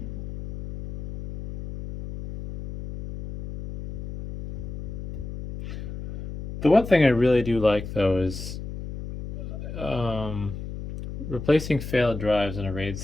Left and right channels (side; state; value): left; noise; hum, 9 dB below the sound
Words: The one thing I really do like, though, is replacing failed drives in a RAID